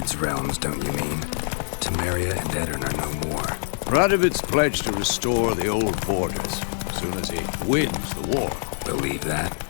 realms, don't you mean? Temeria and Edirn are no more. Radovid's pledged to restore the old borders as soon as he wins the war. Believe that?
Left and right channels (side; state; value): right; silent; digital silence